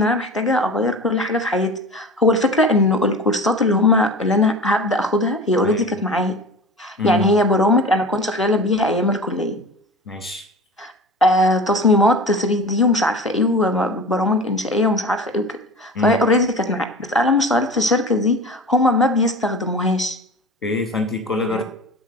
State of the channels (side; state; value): both; normal; correlation 0.35